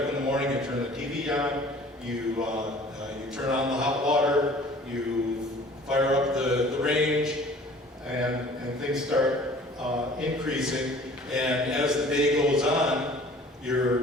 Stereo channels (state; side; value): normal; both; correlation 0.49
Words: in the morning, you turn the TV on, you turn on the hot water, you fire up the range, and things start increasing. And as the day goes on,